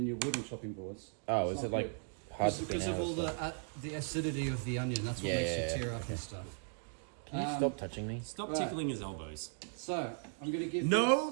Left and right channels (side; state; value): left; silent; 53 dB below the other